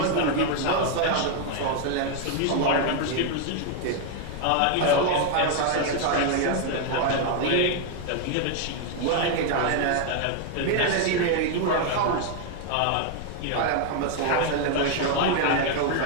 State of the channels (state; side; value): different; both; correlation 0.00